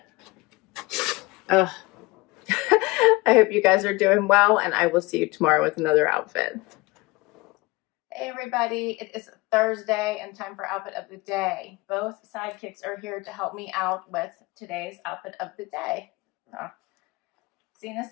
I hope you guys are doing well, and I will see you tomorrow with another outfit. Hey everybody, it is Thursday and time for outfit of the day. Both sidekicks are here to help me out with today's outfit of the day. Zena's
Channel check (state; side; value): quieter; right; 22.8 dB